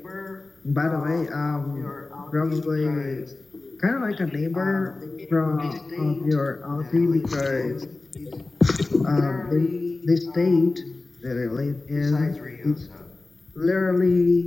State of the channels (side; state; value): right; quieter; 3.3 dB